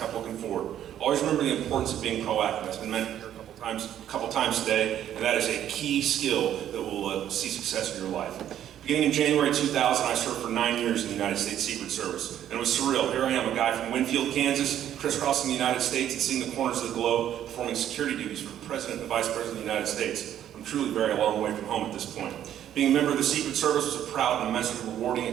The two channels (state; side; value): quieter; left; 10.9 dB